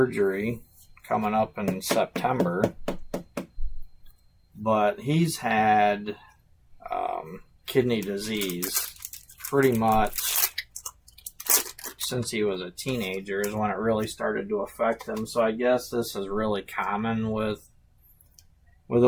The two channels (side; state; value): both; identical; correlation 1.00